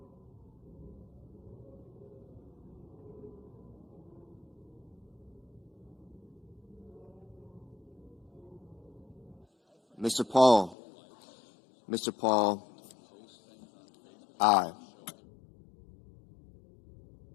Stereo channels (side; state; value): right; drops out; at 10.8 s